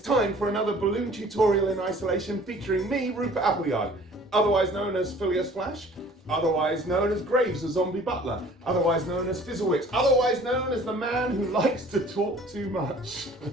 for another balloon tutorial in isolation featuring me, Rupert Appleyard, otherwise known as Phileas Flash, otherwise known as Graves, the zombie butler, otherwise known as Fizzlewicks, otherwise known as the man who likes to talk too much.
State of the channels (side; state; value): both; normal; correlation 0.51